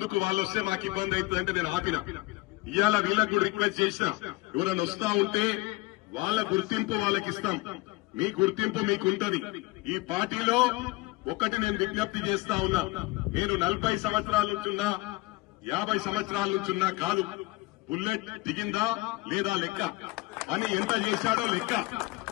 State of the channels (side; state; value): right; quieter; 22.0 dB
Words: వాళ్ళు వస్తే మాకు ఇబ్బంది అవుతుందంటే నేను ఆపిన. ఇవాళ వీళ్ళకు రిక్వెస్ట్ చేసిన, ఎవరైనా వస్తా ఉంటే వాళ్ళ గుర్తింపు వాళ్ళకి ఇస్తాం. మీ గుర్తింపు మీకుంటది. ఈ పార్టీలో ఒకటి నేను విజ్ఞప్తి చేస్తా ఉన్నా, నేను 40 సంవత్సరాల నుంచున్నా, 50 సంవత్సరాల నుంచున్నా కాదు. బుల్లెట్ దిగిందా లేదా లెక్క, అని ఎంత చేశాడో లెక్క.